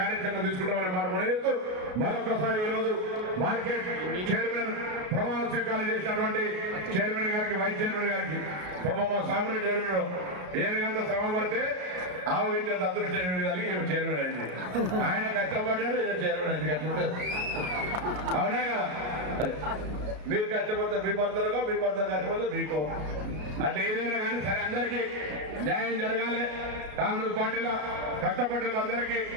తీసుకుంటామనే మాట మనం చేస్తూ మరొకసారి ఈరోజు మార్కెట్ చైర్మన్ ప్రమాణ స్వీకారం చేసినటువంటి చైర్మన్ గారికి వైస్ చైర్మన్ గారికి మా సాగునీటి చైర్మన్ ఏనుగంత శ్రమ పడితే ఆవు విద్యంత అదృష్టం కలిగి చైర్మన్ అయింది. ఆయన కష్టపడ్డాడు, ఈయన చైర్మన్ అయింది. కష్టపడ్డాడు అవునా కదా? మీరు కష్టపడితే మీ భర్తలుగా, మీ భర్త కష్టపడితే మీకు, అట్లా ఏదైనా కానీ సరే అందరికీ న్యాయం జరగాలి. కాంగ్రెస్ పార్టీలో కష్టపడ్డ వాళ్ళందరికీ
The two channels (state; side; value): late; left; 33 ms